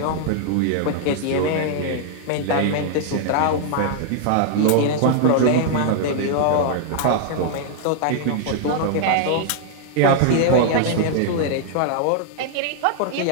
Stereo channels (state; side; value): different; both; correlation 0.00